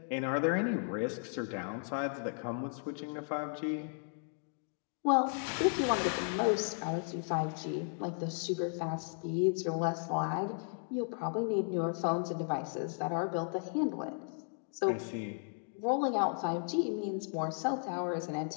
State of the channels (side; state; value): right; silent; 54 dB below the other